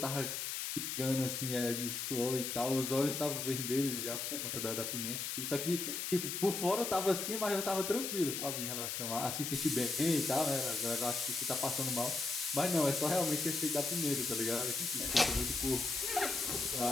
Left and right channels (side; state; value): left; noise; hiss, 3 dB below the sound